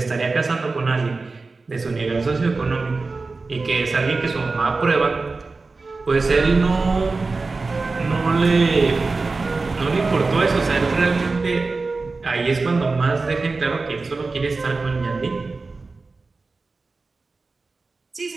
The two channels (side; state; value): left; quieter; 3.8 dB